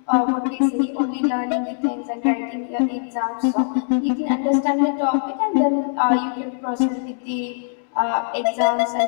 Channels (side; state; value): right; silent; digital silence